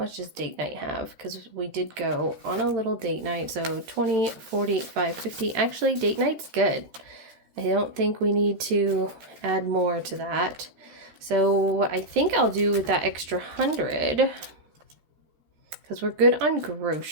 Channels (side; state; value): left; late; 13 ms